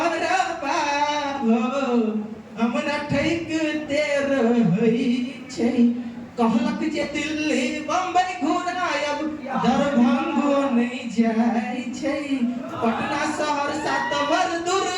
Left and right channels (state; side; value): identical; both; correlation 1.00